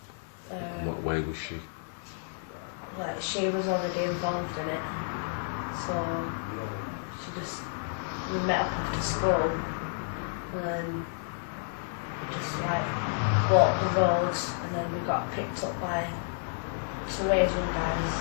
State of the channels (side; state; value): right; silent; digital silence